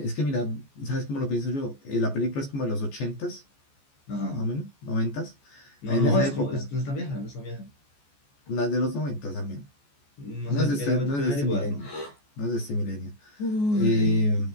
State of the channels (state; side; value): late; right; 14 ms